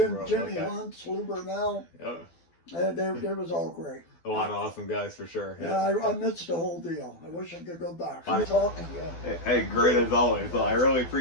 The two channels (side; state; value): right; late; 12 ms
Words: Hunt, Lou Burnell. Yep. They was all great. A lot of awesome guys for sure. Yeah, I missed the whole deal. I wish I could go back. I'm talking to you. Hey, great as always. Well, I really